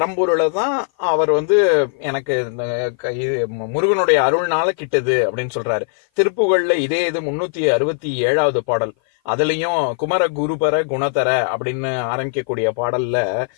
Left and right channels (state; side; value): silent; right; 56 dB below the other